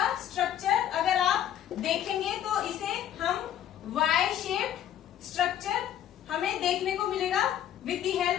स्ट्रक्चर अगर आप देखेंगे तो इसे हम वाई शेप्ड स्ट्रक्चर हमें देखने को मिलेगा with the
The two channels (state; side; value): quieter; right; 10.8 dB